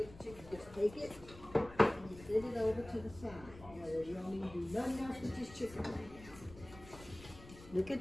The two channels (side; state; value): left; noise; rumble, 17 dB below the sound